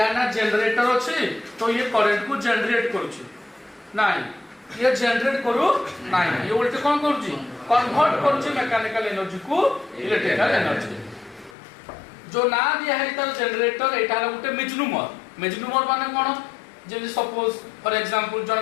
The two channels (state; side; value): drops out; right; at 11.6 s